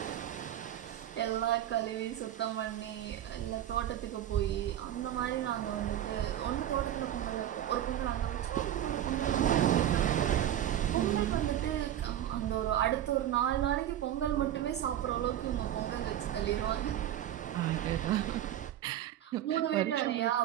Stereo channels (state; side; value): quieter; left; 11.5 dB